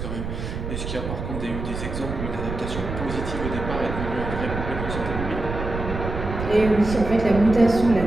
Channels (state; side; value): noise; right; rumble, 6 dB below the sound